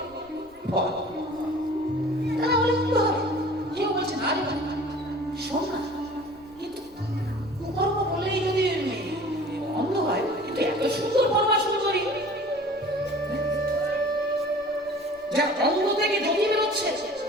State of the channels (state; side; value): noise; left; rumble, 28 dB below the sound